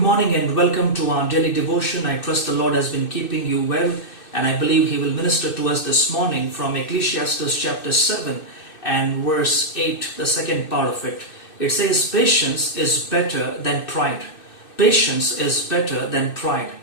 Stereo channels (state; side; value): late; right; 2.6 ms